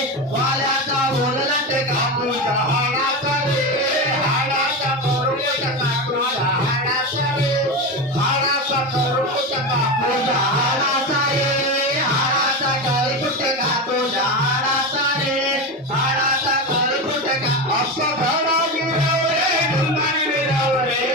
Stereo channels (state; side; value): normal; both; correlation 0.19